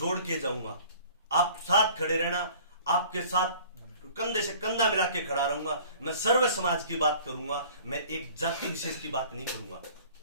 के जाऊंगा। आप साथ खड़े रहना, आपके साथ कंधे से कंधा मिला के खड़ा रहूंगा। मैं सर्व समाज की बात करूंगा, मैं एक जाति विशेष की बात नहीं करूंगा।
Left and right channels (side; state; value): both; inverted; correlation -0.49